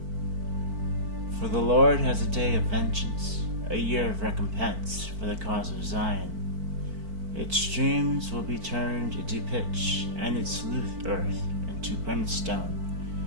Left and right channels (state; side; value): late; left; 4.5 ms